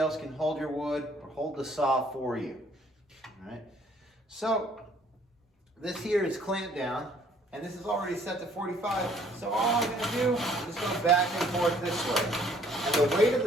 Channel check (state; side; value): normal; both; correlation 0.60